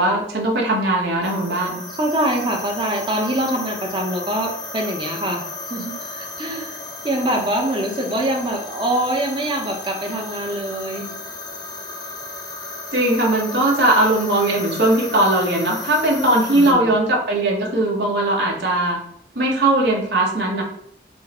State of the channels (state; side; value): normal; both; correlation 0.26